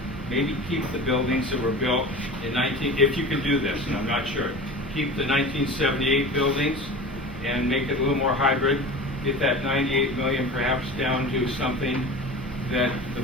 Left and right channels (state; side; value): normal; both; correlation 0.34